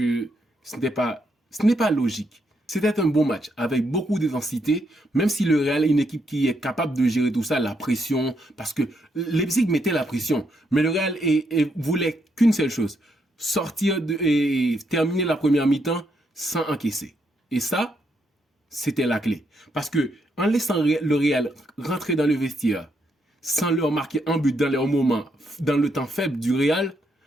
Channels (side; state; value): both; normal; correlation 0.78